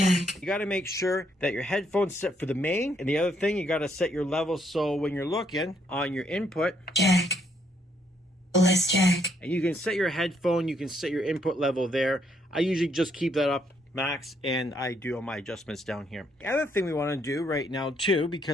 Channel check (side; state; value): both; normal; correlation 0.72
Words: You got to make sure that your headphones set for the main, and the other thing, you got to set your level so when you're looking on your input, Jack, bliss jack. and you can set your headphone, you can set your input level there. I usually just keep that up max, and I do all my adjustments down here. The other thing we want to do right now too,